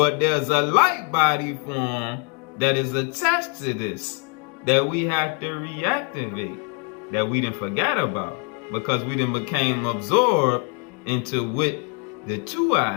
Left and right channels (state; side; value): quieter; right; 36.4 dB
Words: there's a light body form that is attached to this that we have to reactivate, that we didn't forget about, because we didn't became absorbed into what the two